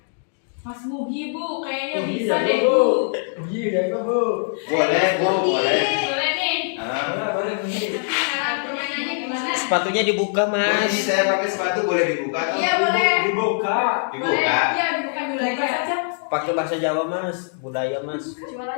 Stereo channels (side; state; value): right; silent; digital silence